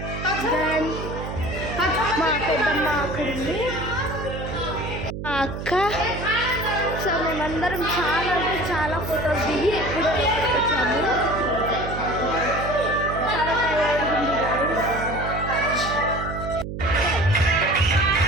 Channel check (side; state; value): right; noise; hum, 7 dB below the sound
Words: దెన్ మా పెద్దమ్మ అక్కడ ఉంది, మా అక్క. సో మేమందరం చాలా అంటే చాలా ఫొటోస్ దిగి ఎప్పుడు వచ్చాము. చాలా టైర్డ్ ఉంది